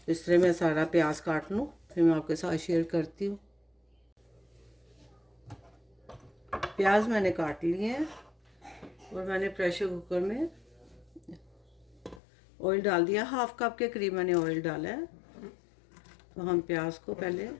इस तरह मैं सारा प्याज काट लूँ, फिर मैं आपके साथ शेयर करती हूँ। प्याज मैंने काट लिए हैं और मैंने प्रेशर कुकर में ऑयल डाल दिया। 1/2 कप के करीब मैंने ऑयल डाला है। तो हम प्याज को पहले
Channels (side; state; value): right; drops out; at 12.2 s